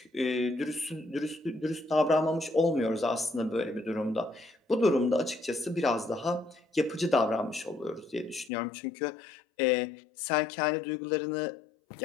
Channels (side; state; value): right; drops out; at 8.5 s